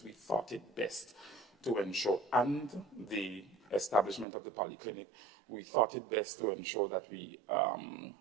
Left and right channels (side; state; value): left; drops out; at 4.2 s